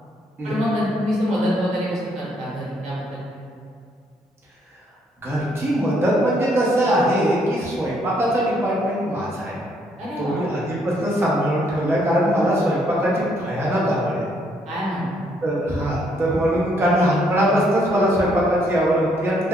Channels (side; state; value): both; normal; correlation 0.70